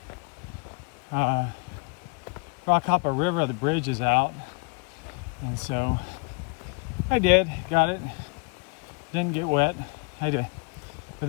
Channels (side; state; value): right; quieter; 33.8 dB